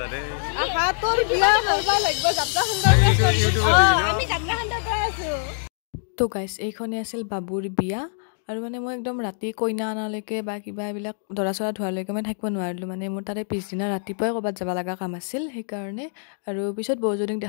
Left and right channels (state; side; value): silent; right; digital silence